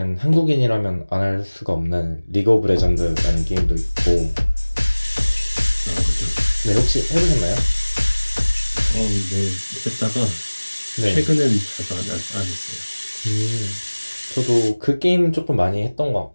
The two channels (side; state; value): both; inverted; correlation -1.00